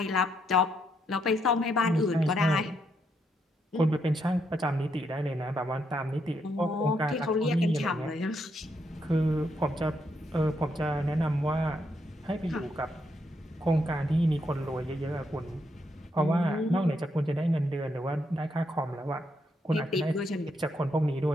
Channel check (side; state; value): both; normal; correlation 0.77